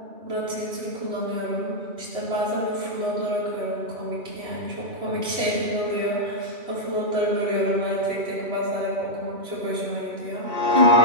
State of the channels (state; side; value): late; left; 3.0 ms